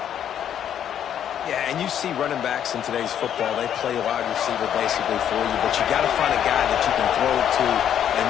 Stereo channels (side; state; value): right; quieter; 9.7 dB